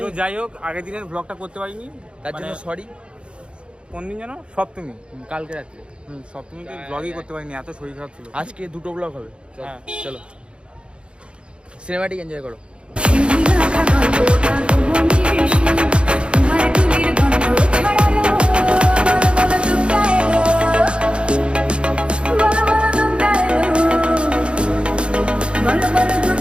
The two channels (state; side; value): late; left; 0.056 ms